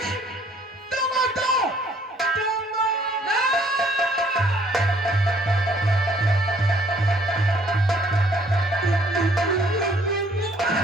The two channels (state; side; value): normal; both; correlation 0.61